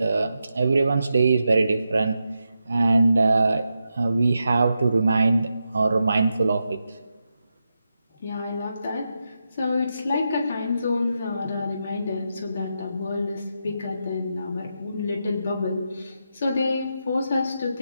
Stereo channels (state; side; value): inverted; both; correlation -0.86